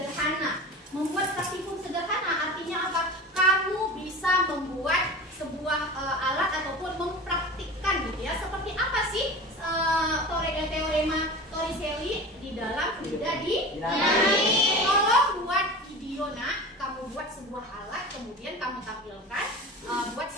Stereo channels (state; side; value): normal; both; correlation 0.33